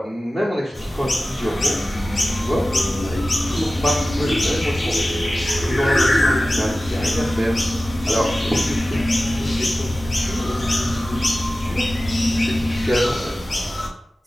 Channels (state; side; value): normal; both; correlation 0.96